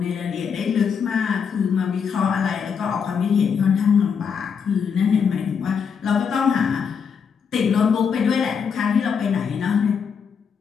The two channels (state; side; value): quieter; right; 6.6 dB